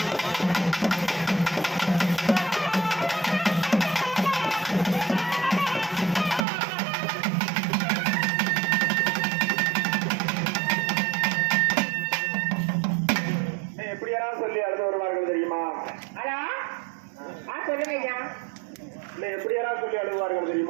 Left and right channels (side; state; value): left; drops out; at 6.5 s